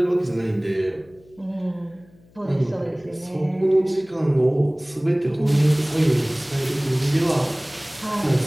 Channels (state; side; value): noise; left; hum, 28 dB below the sound